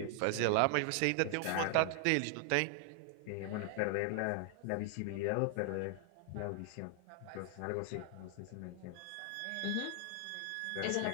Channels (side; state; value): both; different; correlation 0.00